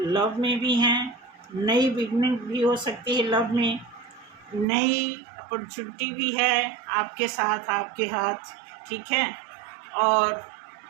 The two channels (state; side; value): drops out; left; at 4.7 s